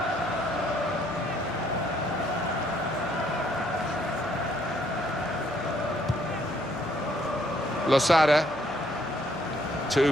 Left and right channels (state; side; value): noise; left; hum, 21 dB below the sound